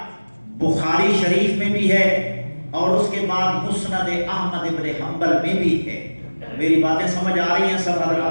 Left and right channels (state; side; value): inverted; both; correlation -1.00